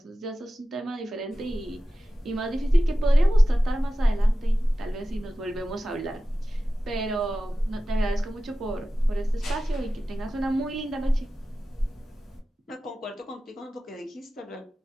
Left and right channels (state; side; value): normal; both; correlation 0.94